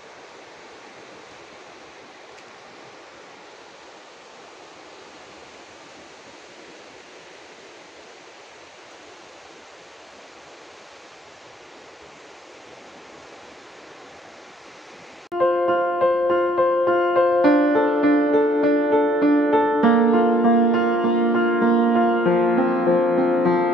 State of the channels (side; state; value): both; normal; correlation 0.63